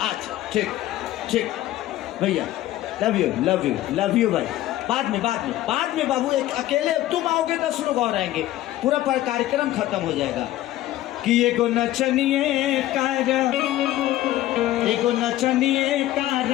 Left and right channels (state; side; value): quieter; right; 14.7 dB